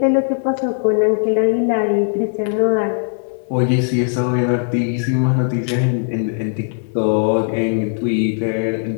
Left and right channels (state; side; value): silent; right; digital silence